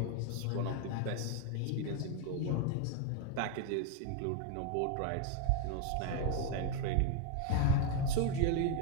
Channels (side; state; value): both; different; correlation 0.01